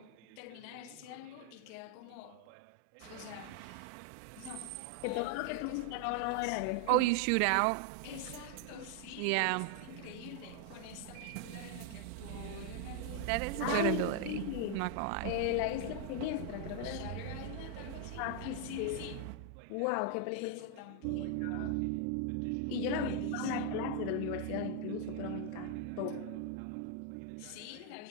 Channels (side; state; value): both; different; correlation 0.00